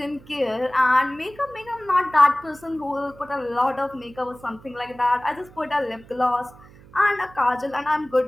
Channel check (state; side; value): noise; right; hum, 23 dB below the sound